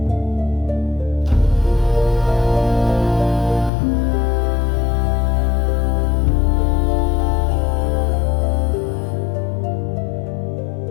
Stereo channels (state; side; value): drops out; right; at 3.7 s